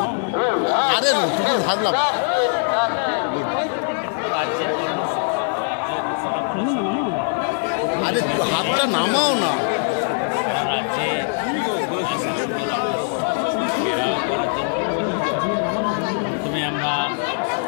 হাতটা নামাও না। সারা রাজ্যে প্রথমে আমরা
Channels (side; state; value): right; silent; digital silence